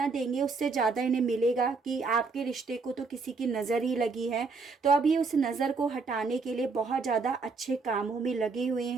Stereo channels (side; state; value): left; quieter; 4.4 dB